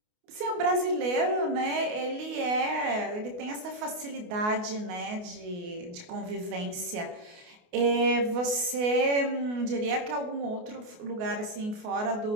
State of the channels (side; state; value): left; late; 28 ms